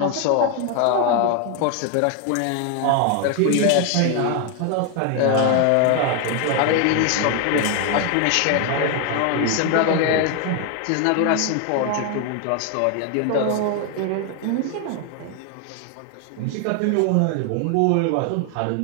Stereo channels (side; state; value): both; different; correlation 0.01